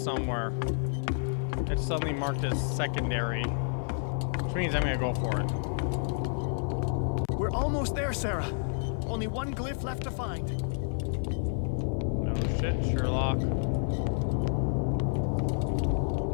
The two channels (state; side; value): silent; right; digital silence